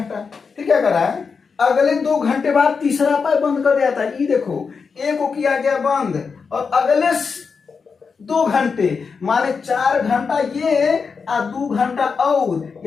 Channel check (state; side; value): quieter; right; 5.4 dB